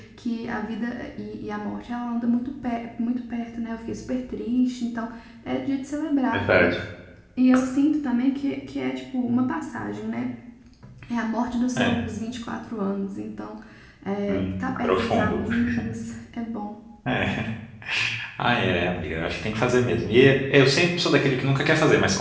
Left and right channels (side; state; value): both; identical; correlation 1.00